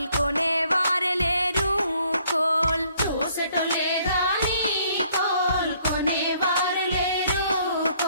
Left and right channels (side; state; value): both; inverted; correlation -0.64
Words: కొనేవారే లేరు కోల్ చూసటోలే గాని కోల్ కొనేవారు లేరు